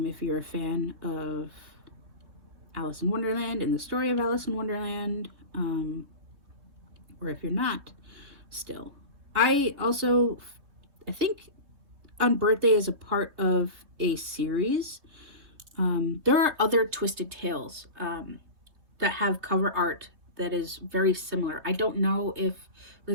you're a fan of Alice in Wonderland and the story of Alice in Wonderland, or if you're not, still. I think Unbirthday is a part of a series. There are other Twisted Tales that have cover art that is very similar. I don't know if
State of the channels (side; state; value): left; late; 3.4 ms